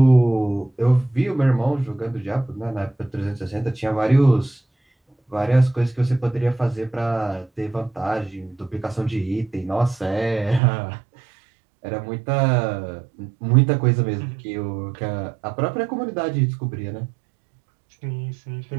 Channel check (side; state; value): left; drops out; at 10.6 s